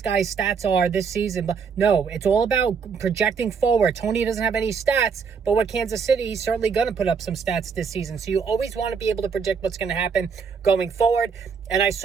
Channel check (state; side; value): quieter; left; 6.0 dB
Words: guy's stats are this season. But no, it's all about projecting forward. Toney doesn't have any stats, but with Kansas City, he's certainly going to put up some stats this season. So you always want to be able to predict what's going to happen going forward. And I